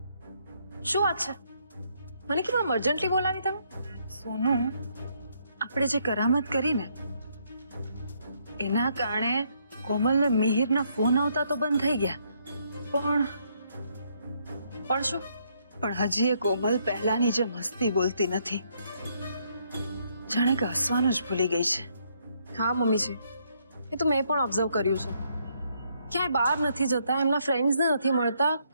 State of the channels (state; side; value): inverted; both; correlation -0.72